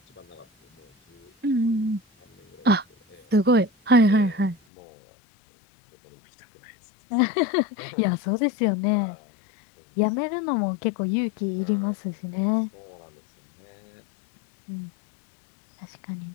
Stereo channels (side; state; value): right; drops out; at 4.5 s